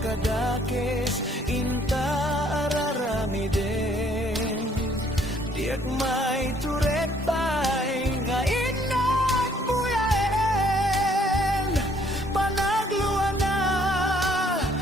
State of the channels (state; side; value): normal; both; correlation 0.63